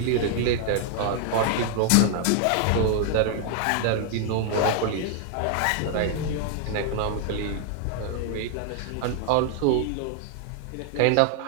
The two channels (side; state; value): both; different; correlation 0.00